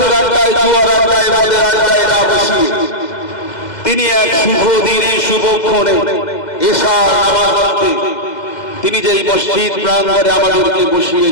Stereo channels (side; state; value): right; late; 2.1 ms